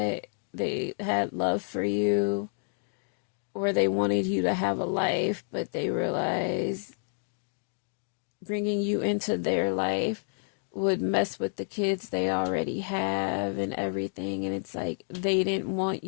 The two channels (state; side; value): silent; right; digital silence